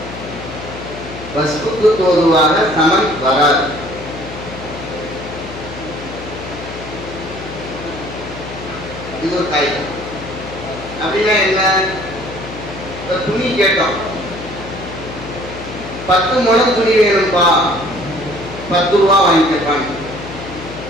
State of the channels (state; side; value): noise; left; hum, 12 dB below the sound